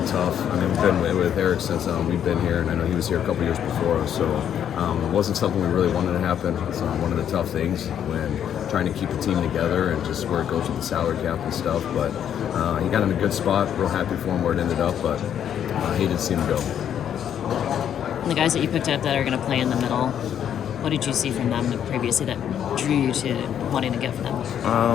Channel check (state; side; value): quieter; right; 9.4 dB